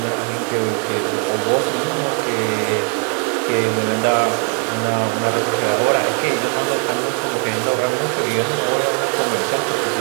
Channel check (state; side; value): quieter; left; 39.3 dB